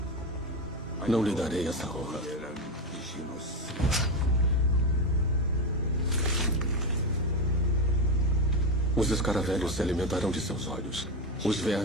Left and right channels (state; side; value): normal; both; correlation 0.13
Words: Não lhe darei essa honra. Os escaravelhos se alimentarão de seus olhos. Os